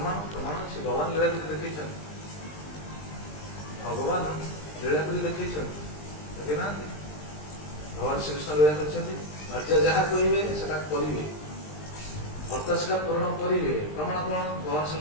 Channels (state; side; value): late; right; 20 ms